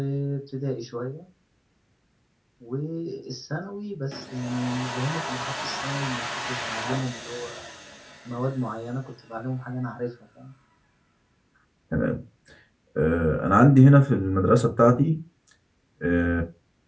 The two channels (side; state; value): both; identical; correlation 1.00